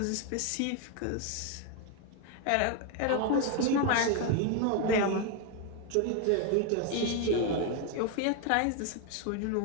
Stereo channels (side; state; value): both; different; correlation 0.01